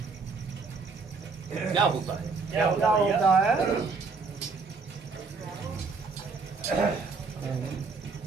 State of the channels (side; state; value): left; quieter; 4.6 dB